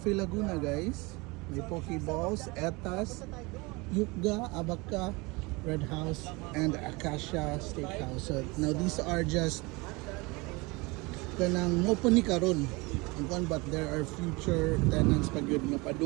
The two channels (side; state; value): left; quieter; 25.3 dB